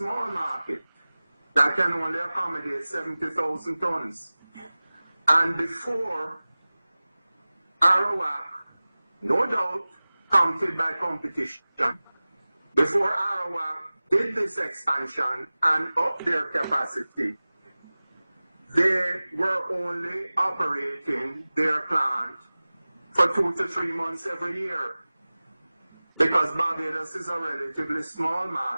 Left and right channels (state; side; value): inverted; both; correlation -0.98